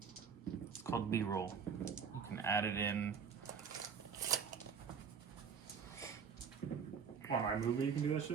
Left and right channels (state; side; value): quieter; left; 6.3 dB